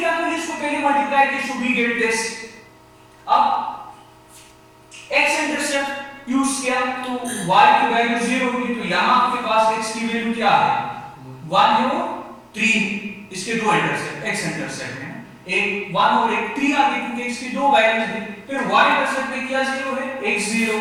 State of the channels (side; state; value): both; identical; correlation 1.00